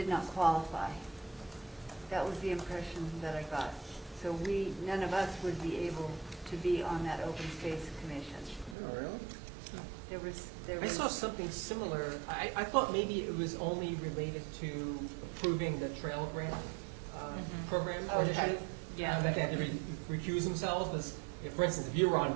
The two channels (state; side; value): drops out; left; at 8.8 s